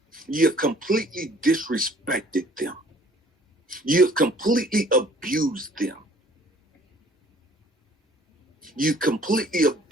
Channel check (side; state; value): both; normal; correlation 0.55